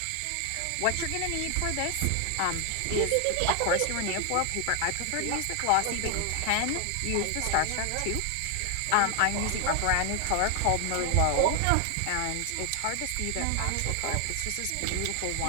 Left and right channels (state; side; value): different; both; correlation 0.00